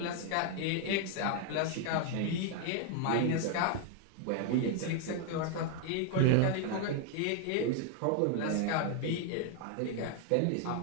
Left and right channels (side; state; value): both; different; correlation 0.00